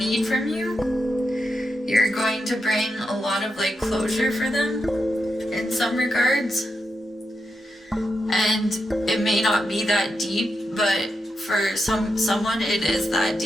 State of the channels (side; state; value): both; normal; correlation 0.86